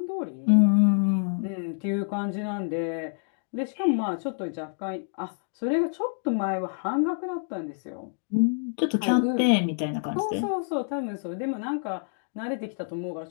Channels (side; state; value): right; silent; digital silence